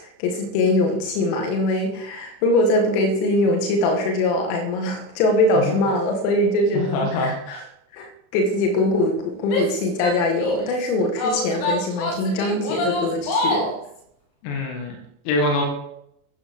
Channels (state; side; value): late; right; 32 ms